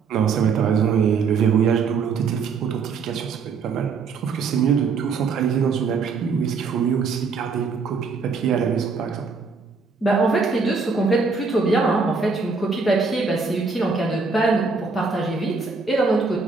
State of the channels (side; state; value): left; quieter; 4.9 dB